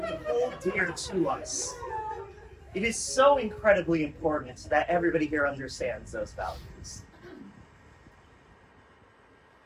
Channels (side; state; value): both; identical; correlation 1.00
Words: we hold dear to us. It is so incredibly important that everybody here understands those values.